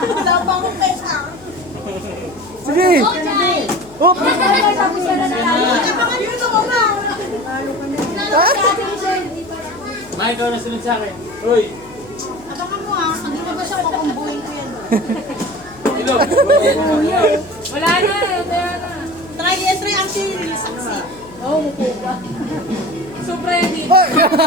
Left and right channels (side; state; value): left; noise; hum, 23 dB below the sound